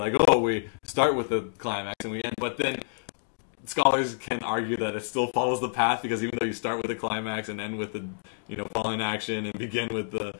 oh, we start with the climax and we end. But then scholars can argue that it still follows the path because even though you start with the climax and end with the, falling action and begin with the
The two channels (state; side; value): silent; right; digital silence